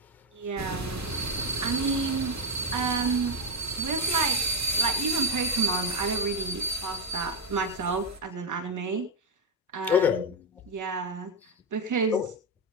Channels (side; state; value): both; normal; correlation 0.04